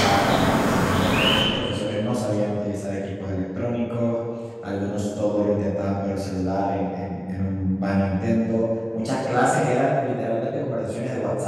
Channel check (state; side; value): identical; both; correlation 1.00